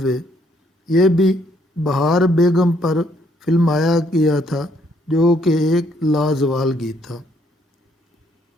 وے، یہ بھی بہار بیگم پر فلمایا گیا تھا، جو کہ ایک لازوال گیت تھا۔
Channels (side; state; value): both; normal; correlation 0.69